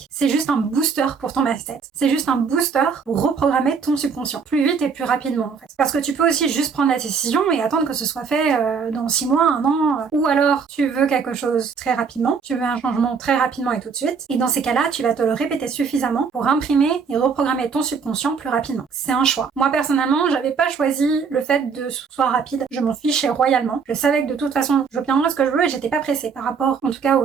c'est juste un booster pour ton mindset. C'est juste un booster pour reprogrammer ton subconscient plus vite et plus rapidement en fait. Parce que tu peux aussi juste prendre la décision et attendre que ce soit fait dans 6 mois, 1 an, ou alors tu veux quelque chose très rapidement, tu veux un changement très rapidement et tout de suite. Et dans ces cas-là, tu vas te le répéter suffisamment pour imprimer et reprogrammer ton subconscient plus rapidement. C'est un choix. Moi personnellement, j'avais pas choisi le fait de soit rapide. Je m'en fichais royalement. Je savais que de toute façon, je obtiendrais ce que je veux et j'étais pas pressée par rapport, en tout cas, au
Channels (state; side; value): quieter; left; 5.8 dB